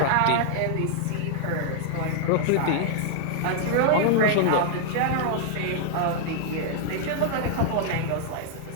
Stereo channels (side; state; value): both; different; correlation -0.01